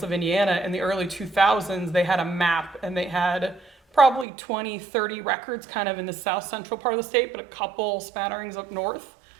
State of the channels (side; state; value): left; drops out; at 4.2 s